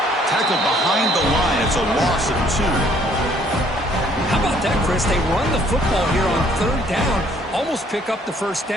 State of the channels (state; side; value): normal; both; correlation 0.62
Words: Tackled behind the line. It's a loss of 2. How about that, Chris? They run the football here on third down, almost pick up the first